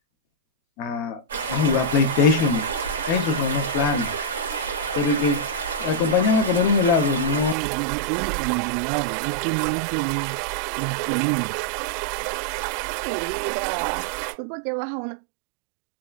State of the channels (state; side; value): drops out; left; at 7.6 s